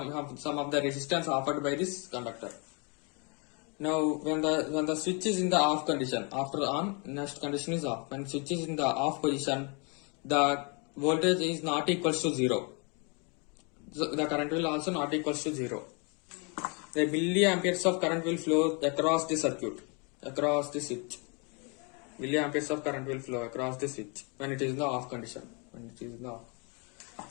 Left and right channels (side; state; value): right; quieter; 33.9 dB